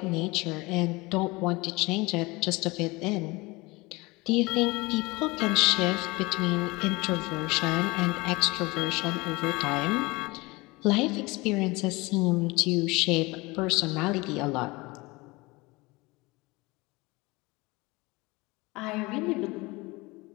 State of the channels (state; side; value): quieter; right; 23.3 dB